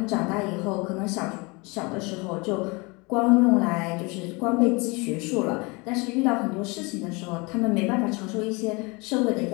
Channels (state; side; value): quieter; right; 27.3 dB